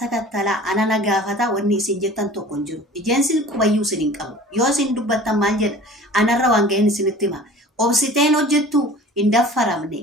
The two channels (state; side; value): normal; both; correlation 0.43